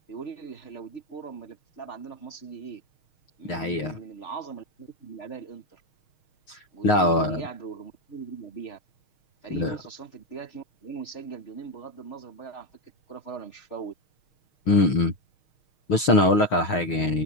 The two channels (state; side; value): late; right; 6.4 ms